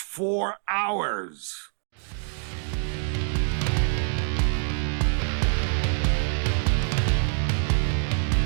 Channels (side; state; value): left; silent; digital silence